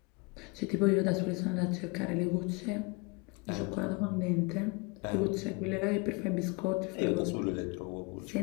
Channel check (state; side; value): quieter; right; 28.0 dB